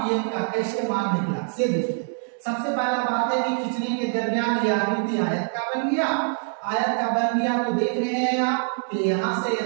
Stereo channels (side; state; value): left; silent; 58 dB below the other